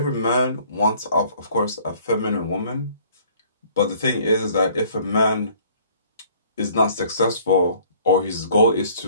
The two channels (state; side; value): inverted; both; correlation -0.57